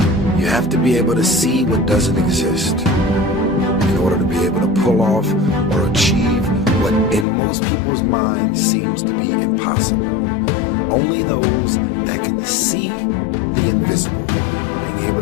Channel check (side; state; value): right; drops out; at 7.2 s